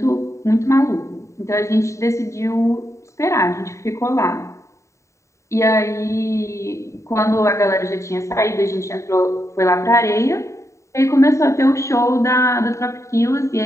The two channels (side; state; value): right; late; 0.14 ms